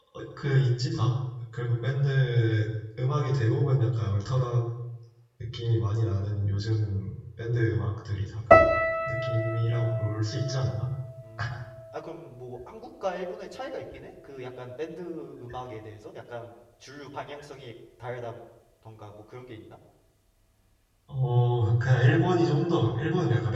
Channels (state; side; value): identical; both; correlation 1.00